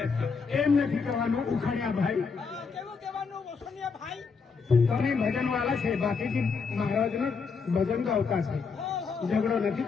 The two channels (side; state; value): right; quieter; 5.2 dB